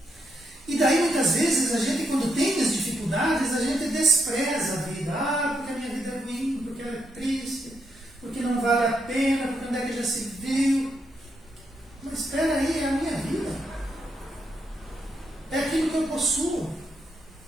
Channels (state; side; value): normal; both; correlation 0.79